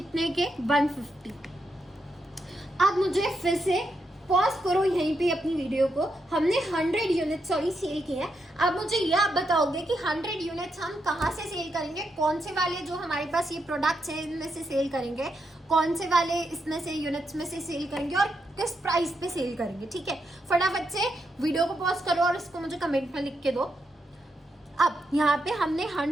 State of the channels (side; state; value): both; normal; correlation 0.82